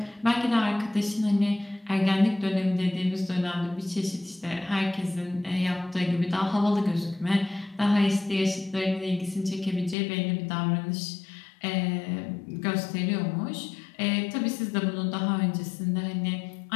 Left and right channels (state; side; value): drops out; right; at 10.0 s